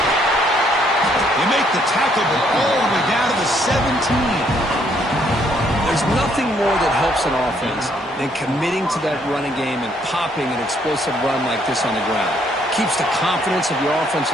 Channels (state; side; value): normal; both; correlation 0.68